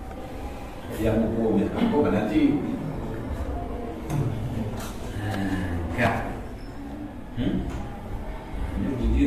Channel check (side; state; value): both; identical; correlation 1.00